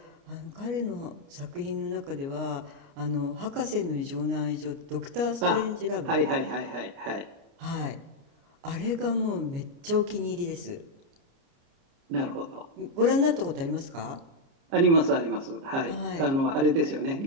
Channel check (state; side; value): late; left; 29 ms